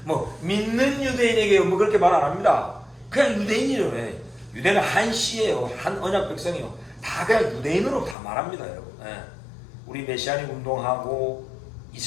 뭐 믿는 유대인에게요. 뭐 그렇게 말 안 합니다. 그냥 유대인이래요. 유대는 한 씨예요. 한 언약 백성이요. 다 그냥 유대인으로 다 말합니다, 여러분. 우리 메시아닉 운동하고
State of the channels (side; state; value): right; drops out; at 8.2 s